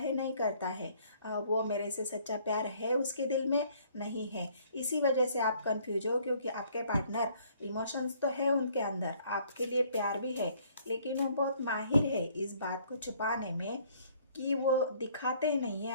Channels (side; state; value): both; inverted; correlation -0.61